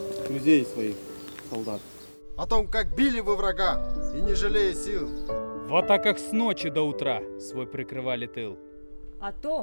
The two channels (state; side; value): inverted; both; correlation -1.00